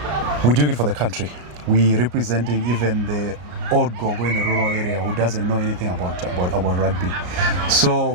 we're doing it for the country. We're representing even the old gogo in the rural area who doesn't know anything about rugby.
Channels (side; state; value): left; late; 34 ms